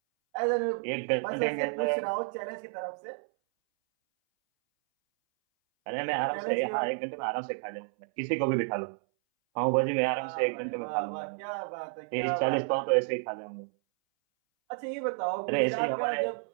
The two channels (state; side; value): silent; left; 57 dB below the other